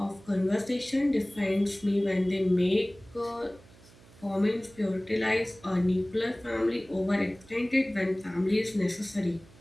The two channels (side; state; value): right; noise; hum, 24 dB below the sound